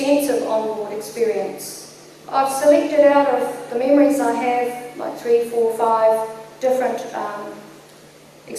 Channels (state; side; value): identical; both; correlation 1.00